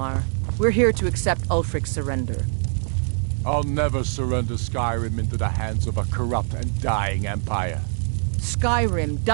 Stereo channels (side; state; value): left; silent; 63 dB below the other